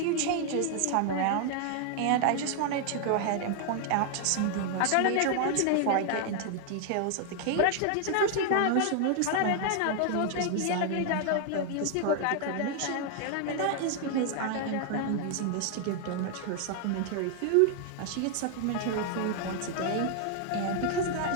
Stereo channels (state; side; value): different; both; correlation 0.00